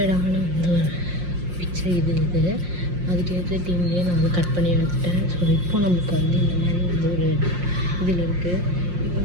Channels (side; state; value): left; late; 5.6 ms